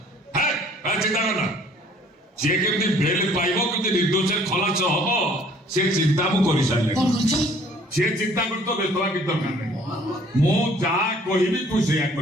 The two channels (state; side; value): normal; both; correlation 0.57